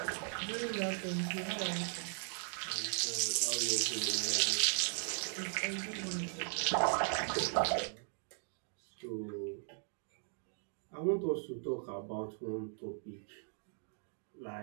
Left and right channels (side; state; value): left; silent; 52 dB below the other